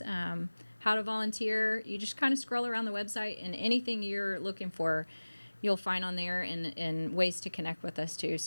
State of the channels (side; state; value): both; inverted; correlation -1.00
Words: how to volunteer. You just kind of scroll around the website, and anything you're looking for, you'll find on there, and ways to connect with us too.